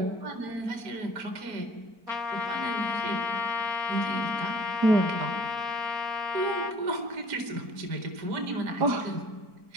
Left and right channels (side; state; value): left; late; 4.5 ms